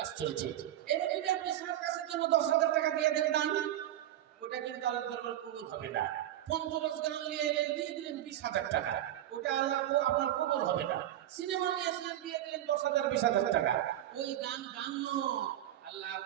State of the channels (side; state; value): left; quieter; 12.8 dB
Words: চলছে। এবার যদি আপনি সার্কাসের জন্য 10,000 টাকা দিয়ে দেন দান, ওটা কিন্তু আল্লাহ দরবার কবুল হবে না। 50 গান নিয়ে এলেন দিয়ে দিলেন 20,000 টাকা, ওটা আল্লাহ আপনার কবুল হবে না। সিনেমা নিয়েছিলেন দিয়ে দিলেন 10,000 20,000 টাকা, ওই গান গান নয়। আল্লাহ